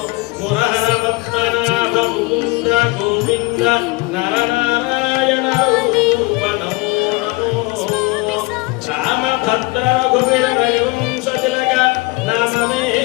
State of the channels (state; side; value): quieter; right; 23.7 dB